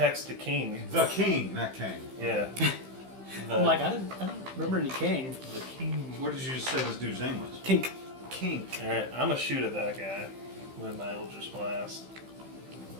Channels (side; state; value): left; late; 15 ms